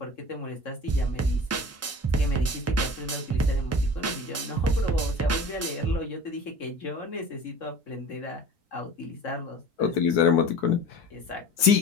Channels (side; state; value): both; normal; correlation 0.39